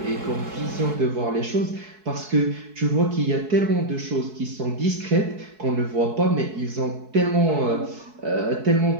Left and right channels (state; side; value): late; left; 4.6 ms